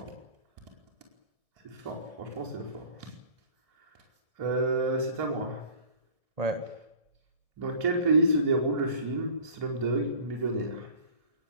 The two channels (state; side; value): late; left; 1.6 ms